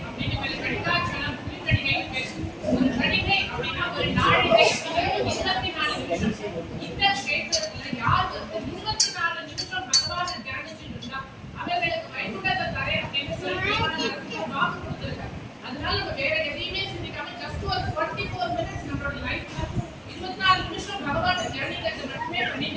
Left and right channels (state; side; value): identical; both; correlation 1.00